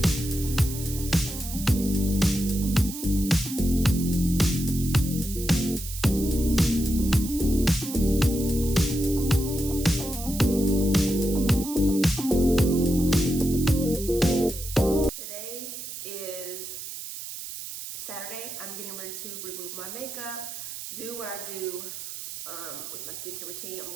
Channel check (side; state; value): right; noise; hiss, 9 dB below the sound